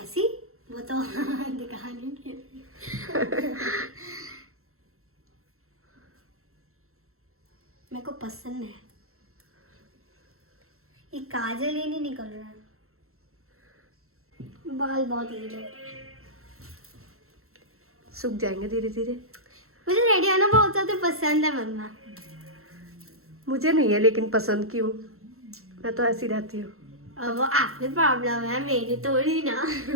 वो तो दिखाने के लिए। मेरे को पसंद है। ये काजल ही नहीं निकल रहा है, बाल बहुत गीले हो रहे हैं। सूख जाएंगे धीरे धीरे। मुझे रेडी होना बहुत ज्यादा पसंद है मम्मा। मुझे नहीं है लेकिन पसंद क्यों, मैं तो ऐसी रहती हूँ। अब वो आपकी प्रॉब्लम है, मेरी थोड़ी ना।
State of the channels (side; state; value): left; late; 0.62 ms